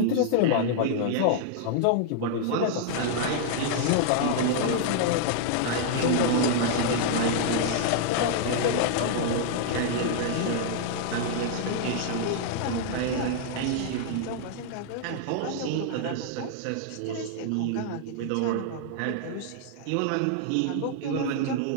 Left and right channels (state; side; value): different; both; correlation -0.01